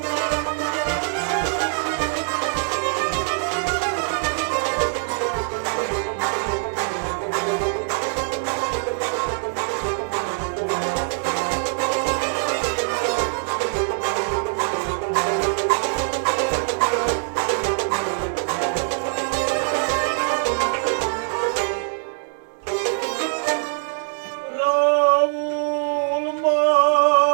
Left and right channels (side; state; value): left; silent; 63 dB below the other